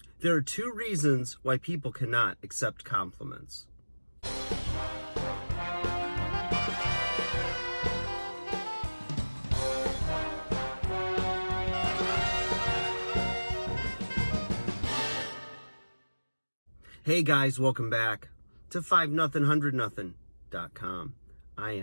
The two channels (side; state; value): both; inverted; correlation -1.00